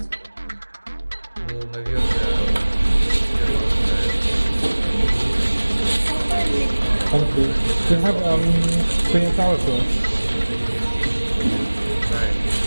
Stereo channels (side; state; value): both; inverted; correlation -1.00